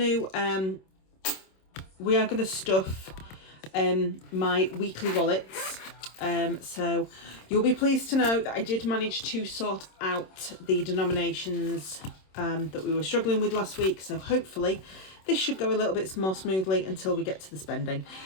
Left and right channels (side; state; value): right; late; 26 ms